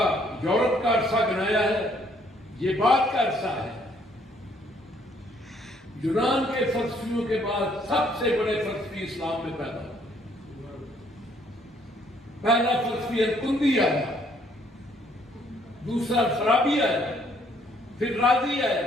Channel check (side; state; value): both; normal; correlation 0.66